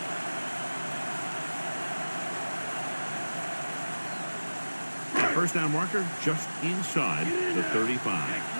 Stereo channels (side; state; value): both; inverted; correlation -1.00